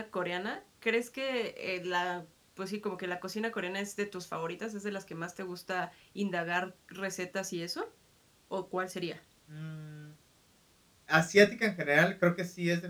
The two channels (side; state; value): both; identical; correlation 1.00